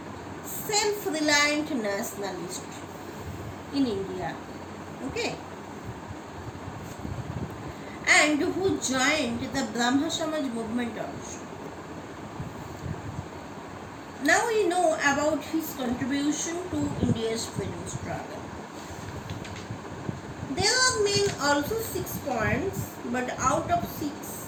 self-reliant nationalist in India. Okay. And who joined the Brahma Samaj movement also. Now we know about his contribution to India's freedom struggle. mean also 6 points, but out of 6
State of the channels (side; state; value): both; identical; correlation 1.00